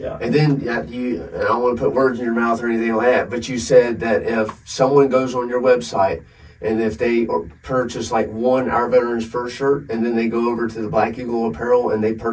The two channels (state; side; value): identical; both; correlation 1.00